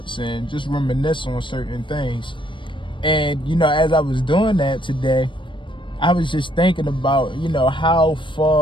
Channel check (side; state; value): right; late; 0.24 ms